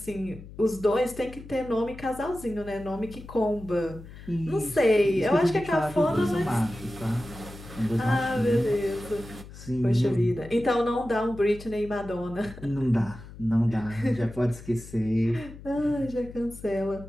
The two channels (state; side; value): noise; left; hum, 16 dB below the sound